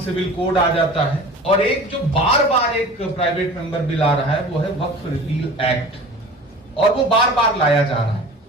सिविल कोड आ जाता है, और एक जो बार बार एक प्राइवेट मेंबर बिल आ रहा है वो है वक्फ रिपील एक्ट, और वो बार बार लाया जा रहा है।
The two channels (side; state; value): both; normal; correlation 0.40